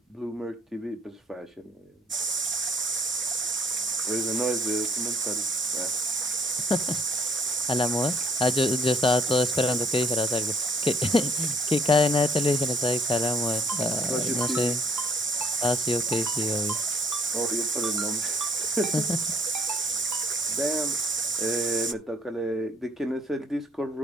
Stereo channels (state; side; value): normal; both; correlation 0.61